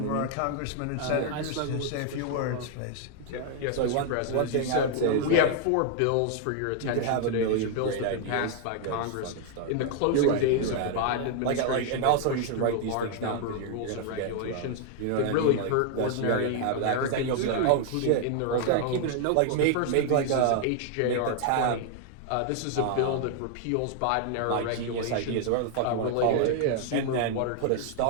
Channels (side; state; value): both; different; correlation 0.00